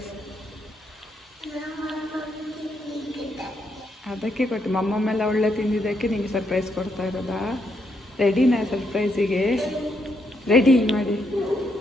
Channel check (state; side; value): normal; both; correlation 0.77